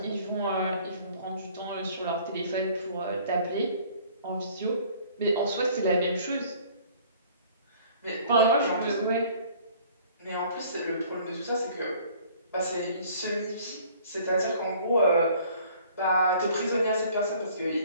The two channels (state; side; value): inverted; both; correlation -0.54